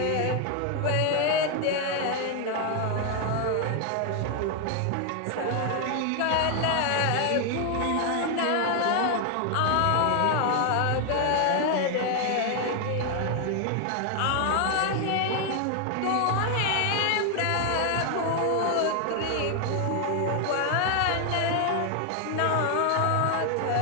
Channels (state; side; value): different; both; correlation 0.00